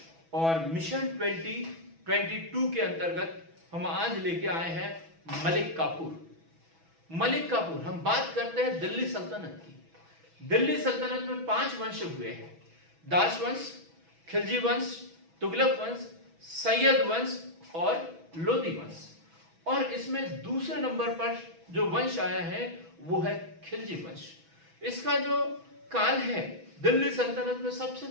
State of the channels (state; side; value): late; left; 6.1 ms